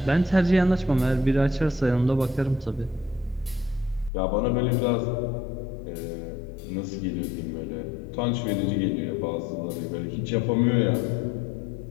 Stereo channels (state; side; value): drops out; right; at 4.1 s